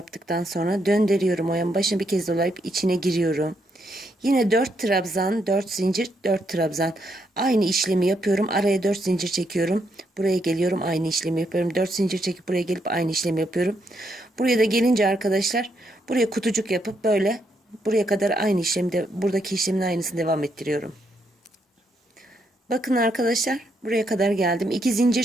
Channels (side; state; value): both; normal; correlation 0.77